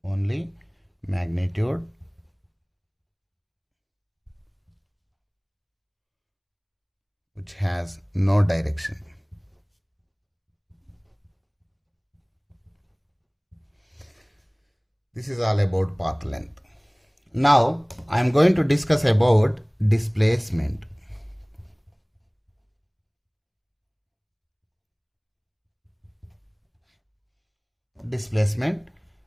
which has no direction. This is all about path length. Now I am going to discuss about displacement. Displacement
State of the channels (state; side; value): identical; both; correlation 1.00